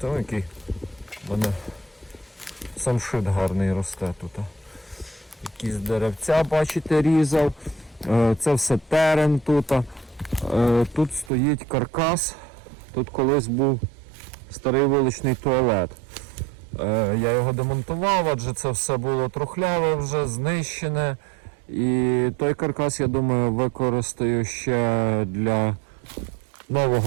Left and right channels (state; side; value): drops out; left; at 11.3 s